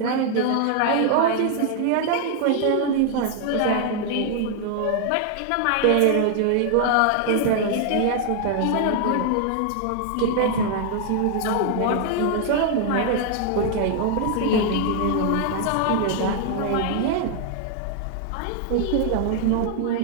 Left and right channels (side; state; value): both; different; correlation 0.00